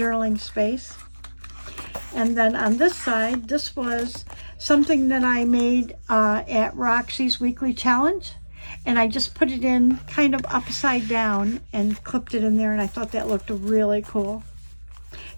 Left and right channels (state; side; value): inverted; both; correlation -1.00